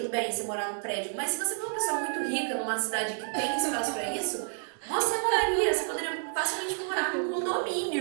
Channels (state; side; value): silent; left; digital silence